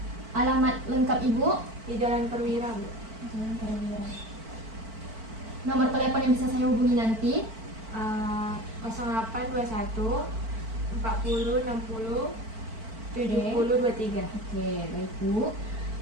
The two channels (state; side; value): late; left; 4.5 ms